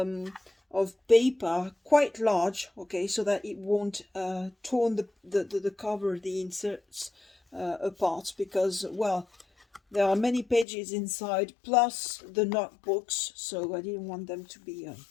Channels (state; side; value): drops out; right; at 10.7 s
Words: of paper, quite large, okay, so that it won't torn the cover, the inserts apart because, well, there are many pages inside plus the notebooks, so I didn't want them to be